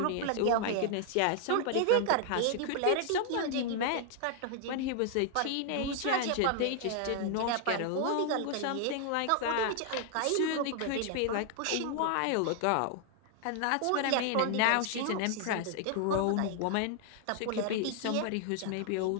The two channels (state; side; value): different; both; correlation 0.00